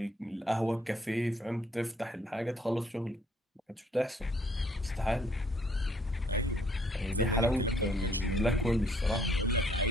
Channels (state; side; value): normal; both; correlation 0.64